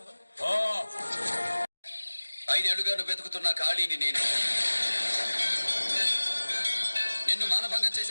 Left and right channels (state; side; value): inverted; both; correlation -1.00